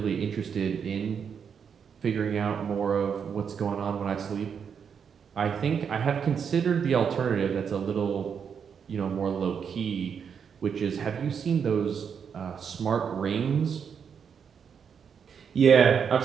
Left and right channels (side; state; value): left; quieter; 7.0 dB